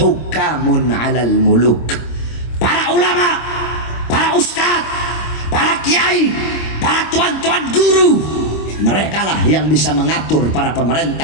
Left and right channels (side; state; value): right; late; 26 ms